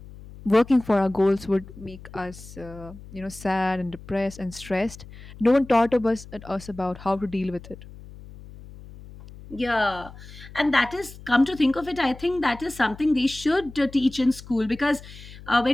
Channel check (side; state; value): left; noise; hum, 17 dB below the sound